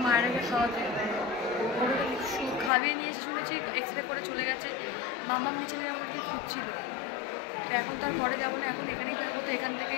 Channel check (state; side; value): drops out; right; at 2.7 s